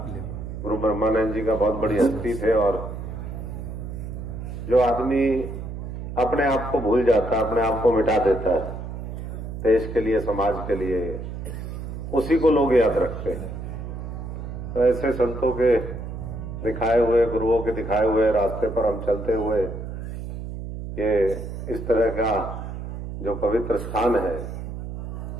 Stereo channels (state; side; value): noise; right; hum, 7 dB below the sound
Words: गुरु ब्रह्मानंद जी का, बहुत बड़ी हस्ती थे, और जो आदमी अपने आप को भूल जाता है, अपने आप को मिटा देता है देश के लिए, समाज के लिए, उसी को लोग याद रखते हैं। तो ऐसे संतों के दिखाए हुए, गुरुओं के दिखाए हुए रास्ते पर हम चलते हुए ये इस तरह का जो पवित्र स्थान है,